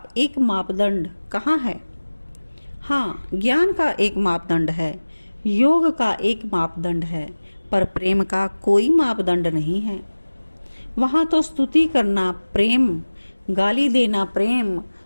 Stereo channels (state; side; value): inverted; both; correlation -1.00